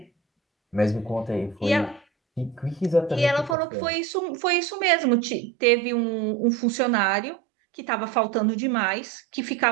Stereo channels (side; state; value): left; drops out; at 3.6 s